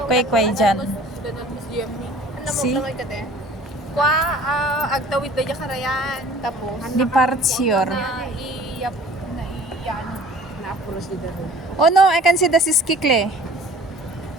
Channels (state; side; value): normal; both; correlation 0.49